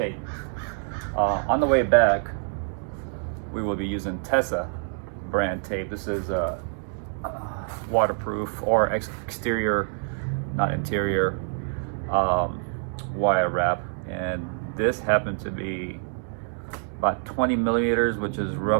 On the way back we will be using Tessa brand tape. This is waterproof or exterior, not interior, wire wrap, and this happened to be about 20 millimeters, which is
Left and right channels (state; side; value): silent; left; 61 dB below the other